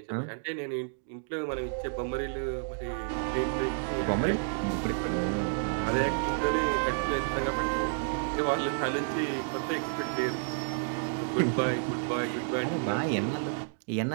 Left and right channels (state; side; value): silent; left; digital silence